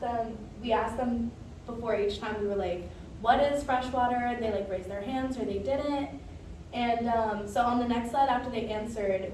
them before each time, we were like, what is freshwater? And they like raised their hands or they didn't. And so on the next slide after they answered,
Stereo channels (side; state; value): both; identical; correlation 1.00